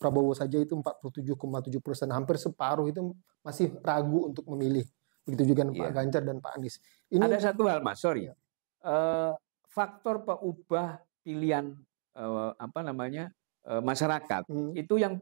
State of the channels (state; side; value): silent; left; 56 dB below the other